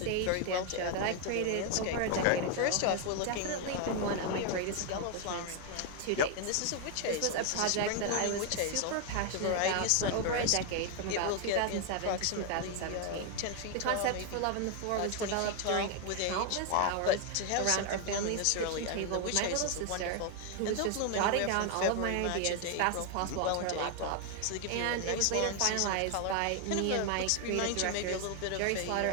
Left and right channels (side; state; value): both; different; correlation 0.01